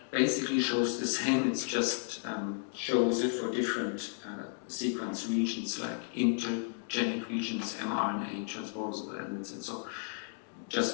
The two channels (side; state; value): right; silent; 56 dB below the other